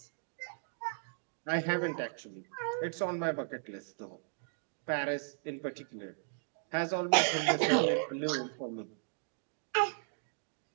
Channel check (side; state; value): left; silent; digital silence